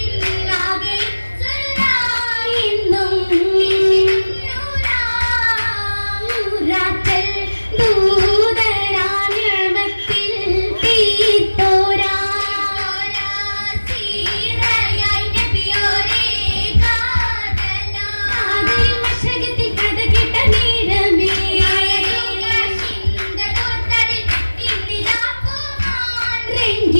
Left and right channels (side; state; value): both; inverted; correlation -1.00